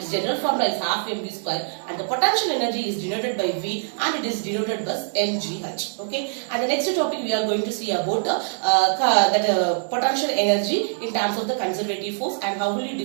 general formula is half mv square, and the potential energy is denoted by V and it is denoted by mgh. Okay, and the next topic we are going to see about potential energy in terms of the conservative force and how will you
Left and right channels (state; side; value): silent; left; digital silence